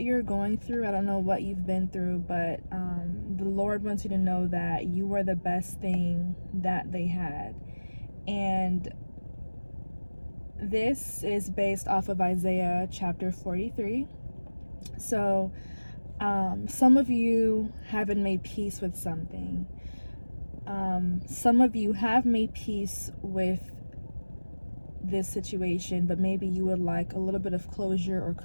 you're going through. I don't know what you've been through, but the Lord wants you to know that you were the best thing that they had. And this is based off of Isaiah chapter 43. So some of you haven't made peace with something. Some of you have made peace with this situation, but maybe you would like a little bit of closure or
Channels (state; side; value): inverted; both; correlation -1.00